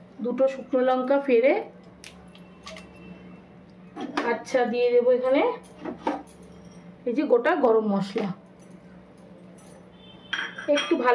2টো শুকনো লঙ্কা ফেড়ে। আচ্ছা, দিয়ে দেবো এখানে এই যে গোটা গরম মশলা, একটু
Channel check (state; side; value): identical; both; correlation 1.00